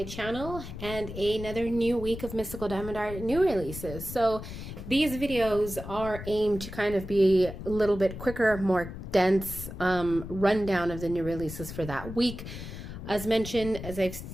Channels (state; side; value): noise; left; rumble, 10 dB below the sound